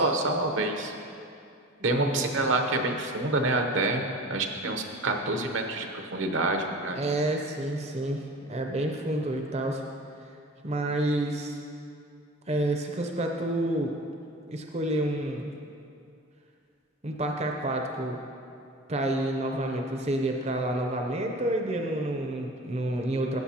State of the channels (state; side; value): normal; both; correlation 0.36